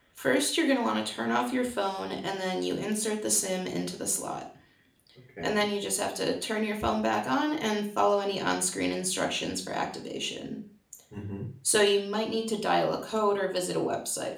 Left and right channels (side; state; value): both; identical; correlation 1.00